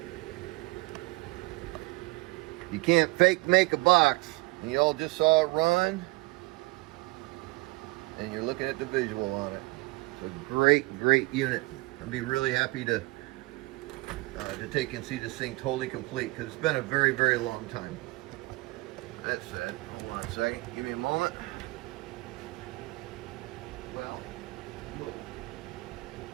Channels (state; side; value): quieter; left; 23.8 dB